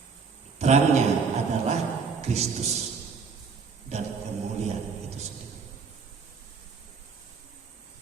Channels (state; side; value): quieter; left; 5.4 dB